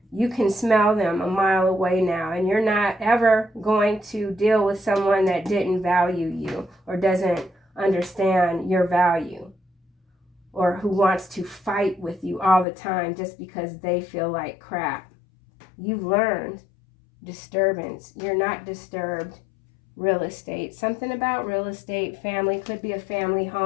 You can smell them a mile away now, and you're not ever going to deal with someone that didn't value you or doesn't understand your value, or who wants to fight with you all the time just because they feel like crap. You've learned. Disturbance. You're not disturbed. Real estate. Something about real estate. Family. Could be a family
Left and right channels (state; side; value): drops out; right; at 12.7 s